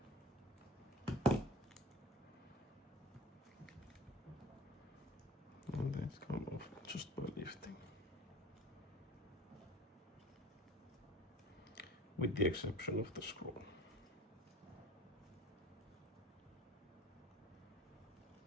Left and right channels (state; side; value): normal; both; correlation 0.40